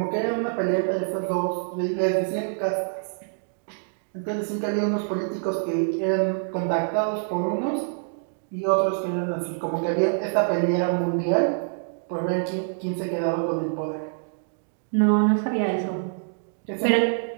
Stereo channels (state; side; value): silent; left; digital silence